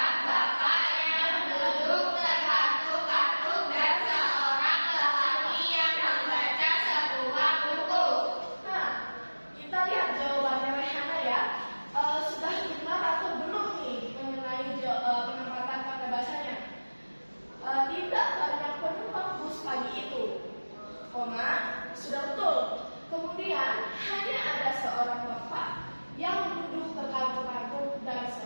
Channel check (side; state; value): both; inverted; correlation -1.00